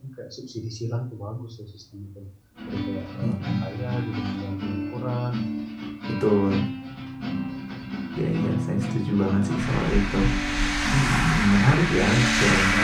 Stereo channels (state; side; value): identical; both; correlation 1.00